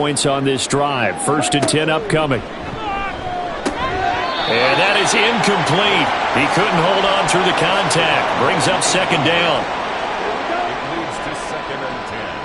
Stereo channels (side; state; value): both; identical; correlation 1.00